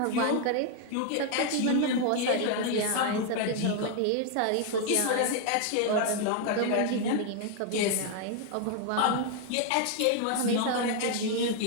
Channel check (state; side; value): different; both; correlation 0.01